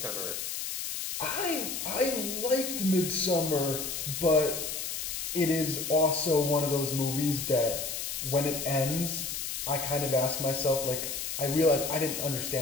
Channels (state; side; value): noise; left; hiss, 4 dB below the sound